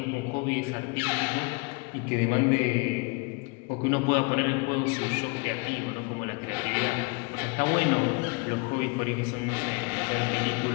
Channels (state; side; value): quieter; right; 29.0 dB